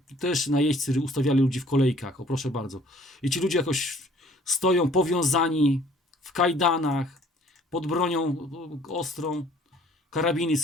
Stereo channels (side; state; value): both; normal; correlation 0.56